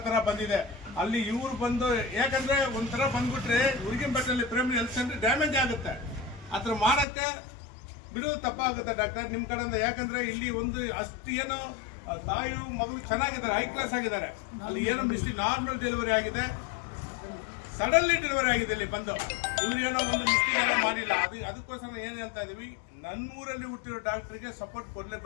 ಥರ ಬಂದಿದೆ. ಅಲ್ಲಿ ಇವ್ರು ಬಂದು, ಯಾಕಂದ್ರೆ ಒಂಥರ ಬಂದ್ಬಿಟ್ರೆ ಉರ್ಗಿಂಪೇಟೆಯಲ್ಲಿ ಪ್ರೈಮರಿ ಹೆಲ್ತ್ ಸೆಂಟರ್ ಡ್ಯಾಮೇಜ್ ಆಗುತ್ತೆ. ಆ ಥರ ಮಾಡೋಕ್ಕೆ ಬಿಡೋದು ತಪ್ಪಾಗುತ್ತೆ ಡಾಕ್ಟರ್ ನಿಮ್ಮ ಕಡೆಯಿಂದ. ಯಾಕಂದ್ರೆ ಇಲ್ಲಿ ಒಂದು ಅಷ್ಟು ಏನೋ ತಾಯಿಯು ಮಗಳು ಚೆನ್ನಾಗಿದ್ದಾರೆ, ಹೈ ಕ್ಲಾಸ್ ಆಗಿದ್ದಾರೆ. ಅಲ್ಲಿ ಏನೋ ಮಿಸ್ಟೇಕ್, ನಾರ್ಮಲ್ ಡೆಲಿವರಿ ಆಗಿದೆ, ಸಡನ್ಲಿ ಡೆಲಿವರಿ ಆಗಿದೆ. ಇಲ್ಲಿ ಬಂದು ಇವ್ರೇನೋ ಒಂದು ಮಿಸ್ಟೇಕ್ ಮಾಡಿಲ್ಲ. ಅದಕ್ಕೋಸ್ಕರ ಏನು ಹೇಳ್ತಾ ಇದೀವಿ, ನನ್ನ ಊರಲ್ಲಿ ಹುಟ್ಟಿರೋ ಡಾಕ್ಟರ್ಗೆ ಸಪೋರ್ಟ್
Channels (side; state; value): right; drops out; at 7.1 s